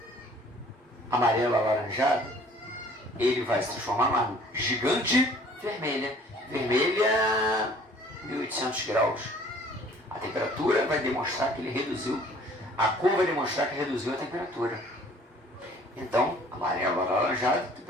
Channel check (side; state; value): both; normal; correlation 0.53